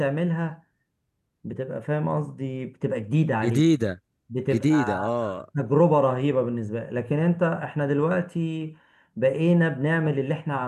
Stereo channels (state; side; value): identical; both; correlation 1.00